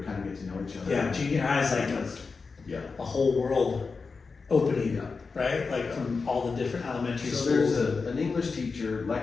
kind of get to know each other. Yeah, junior high is like a whole world opening, right? Like from all the different elementary So schools. there's an English teacher,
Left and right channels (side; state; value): right; quieter; 4.6 dB